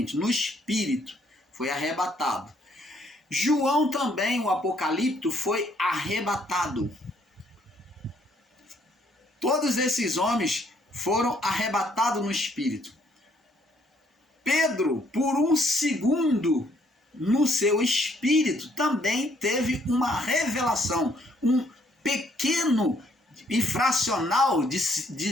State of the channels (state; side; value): normal; both; correlation 0.67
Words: no espírito, foi arrebatado. João também, o Apocalipto, foi arrebatado. Todos esses homens foram arrebatados no espírito. Pedro, por um segundo, no seu espírito, também teve uma revelação, um pequeno e fracional de